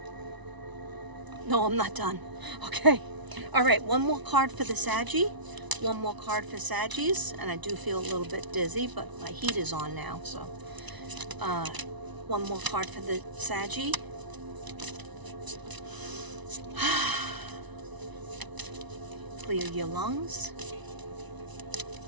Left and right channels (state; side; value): late; left; 1.0 ms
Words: No, I'm not done. Okay. All right, one more card for the Saggy. One more card for Saggies, and I do feel a little bit dizzy, but my heat is on now, so one more card for the Saggy. Clear your lungs.